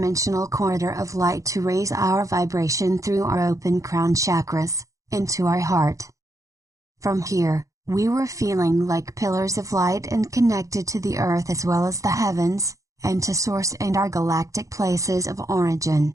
corridor of light to raise our vibration through our open crown chakras, into our heart. From here, We were feeling like pillars of light and connected to the earth as well as the heavens, and to source and our galactic places of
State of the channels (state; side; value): late; left; 0.16 ms